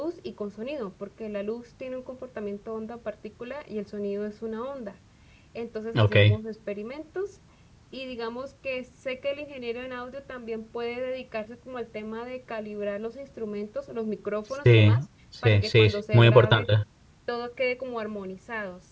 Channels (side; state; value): both; identical; correlation 1.00